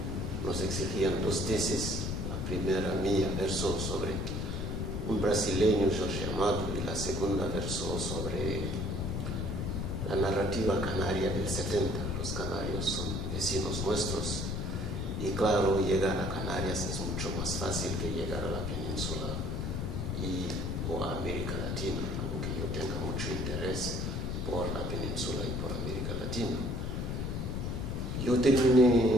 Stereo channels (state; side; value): noise; left; rumble, 2 dB below the sound